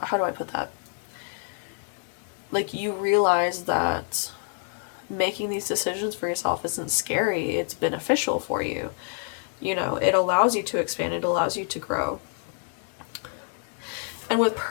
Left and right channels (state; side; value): silent; right; 60 dB below the other